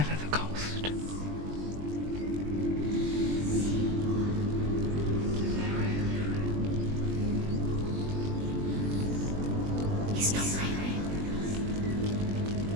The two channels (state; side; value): late; left; 20 ms